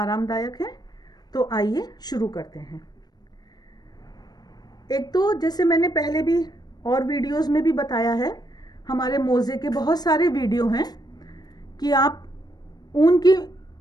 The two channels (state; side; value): late; right; 0.19 ms